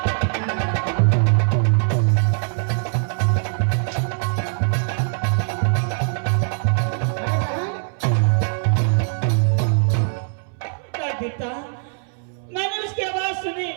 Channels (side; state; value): left; silent; 65 dB below the other